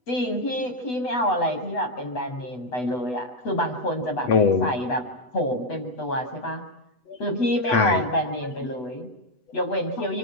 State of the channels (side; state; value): right; late; 8.0 ms